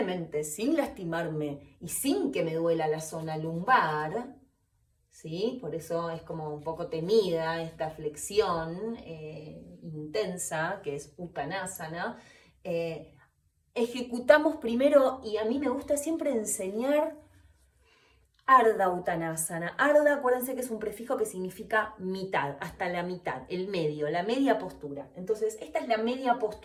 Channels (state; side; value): identical; both; correlation 1.00